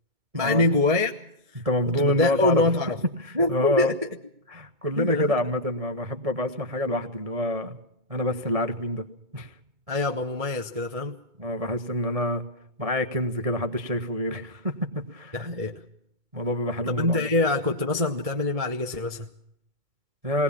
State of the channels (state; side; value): late; left; 2.3 ms